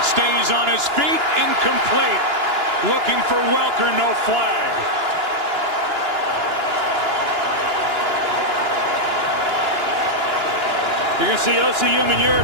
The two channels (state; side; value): late; left; 2.9 ms